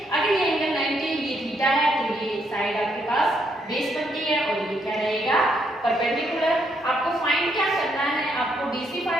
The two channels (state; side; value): normal; both; correlation 0.74